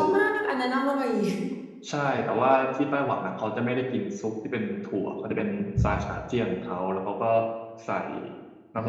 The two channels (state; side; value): identical; both; correlation 1.00